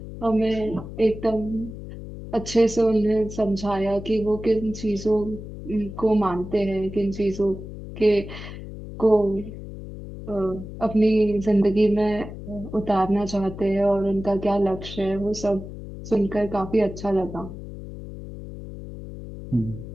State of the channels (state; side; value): noise; left; hum, 11 dB below the sound